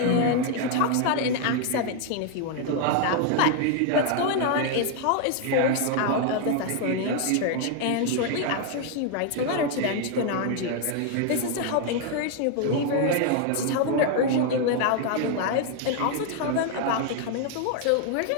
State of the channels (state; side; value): different; both; correlation 0.01